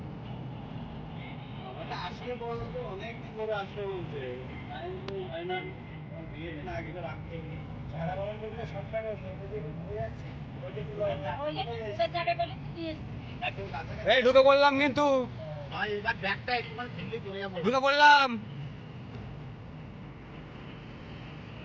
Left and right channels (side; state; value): both; identical; correlation 1.00